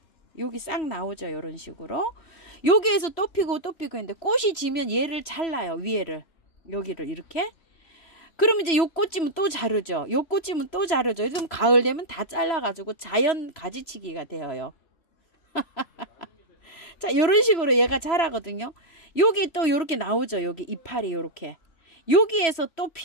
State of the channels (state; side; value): late; right; 3.0 ms